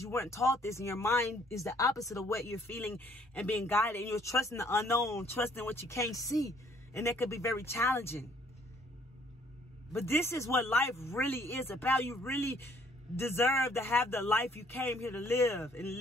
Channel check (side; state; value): both; normal; correlation 0.62